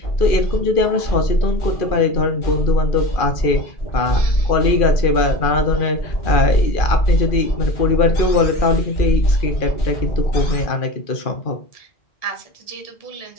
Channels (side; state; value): right; late; 2.4 ms